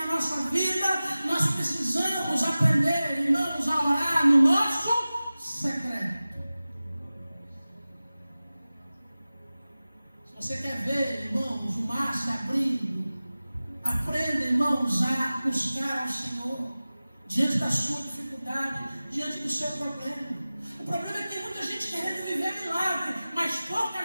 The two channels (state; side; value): inverted; both; correlation -0.97